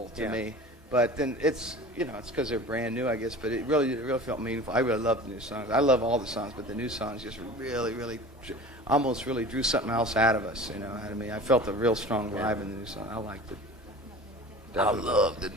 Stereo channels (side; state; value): both; normal; correlation 0.39